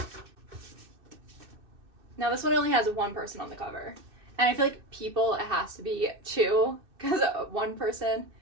Now this one only has 1 person on the cover. And I feel like people, it has to be 2, because 1 person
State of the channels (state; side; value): late; left; 2.6 ms